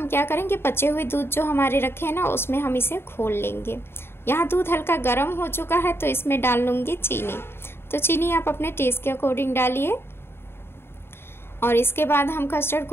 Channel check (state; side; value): late; right; 0.11 ms